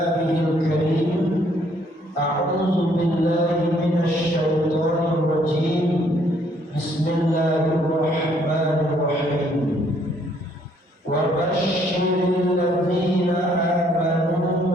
الكريم أعوذ بالله من الشيطان الرجيم بسم الله الرحمن الرحيم وبشر الذين آمنوا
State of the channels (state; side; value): normal; both; correlation 0.66